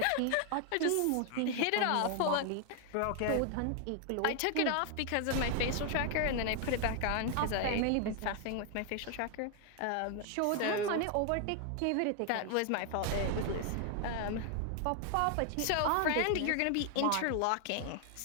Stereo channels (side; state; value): both; different; correlation 0.00